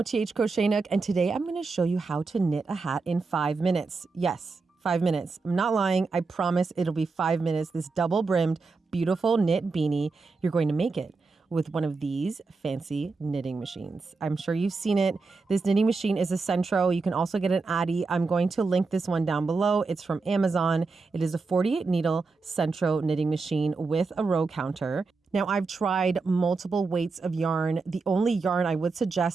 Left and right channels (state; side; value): quieter; left; 4.2 dB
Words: Crochet Nook, and today I'm going to show you how to knit a hat in 5 minutes. Yes, 5 minutes. I'm not lying. I promise it'll be 5 minutes. This double-brimmed, beautiful knit beanie, you're going to make it with one of these fancy knitting machines. I'm sure you've seen it. This knitting machine is a Centro. You can also get an Addi. I'm going to link this one down below. It's from Amazon. It is a 48 needle Centro knitting machine with a row counter. Now, I've tried multiple weights of yarn. The only yarn I would